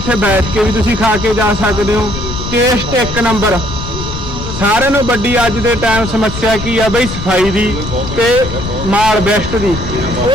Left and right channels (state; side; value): noise; left; rumble, 7 dB below the sound